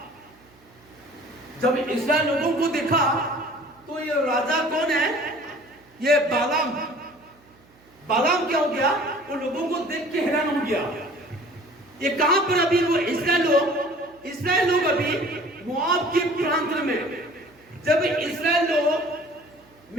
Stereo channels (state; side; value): noise; right; hum, 30 dB below the sound